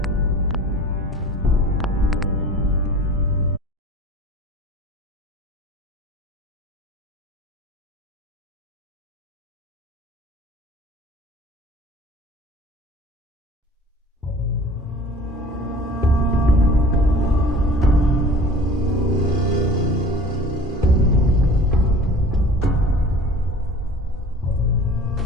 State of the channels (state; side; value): normal; both; correlation 0.44